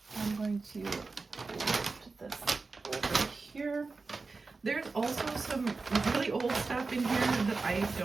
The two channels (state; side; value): quieter; left; 4.0 dB